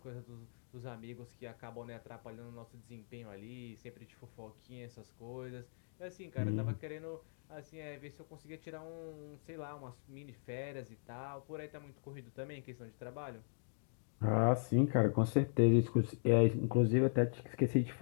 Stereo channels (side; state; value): right; silent; digital silence